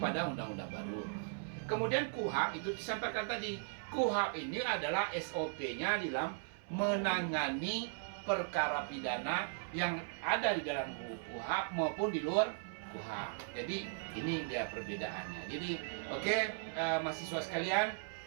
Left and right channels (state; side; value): silent; left; 53 dB below the other